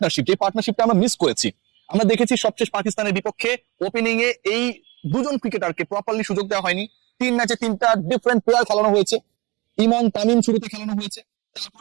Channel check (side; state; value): left; quieter; 24.3 dB